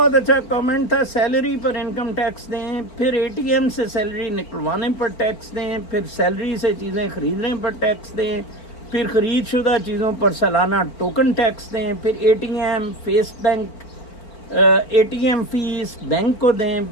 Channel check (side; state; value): right; late; 4.4 ms